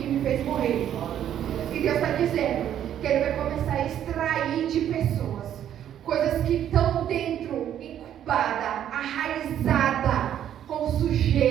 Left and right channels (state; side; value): quieter; left; 10.4 dB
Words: me fez morrer. E Deus está dizendo que ele vai começar a extrair de pessoas coisas que estão dentro, incubada, arraizada, com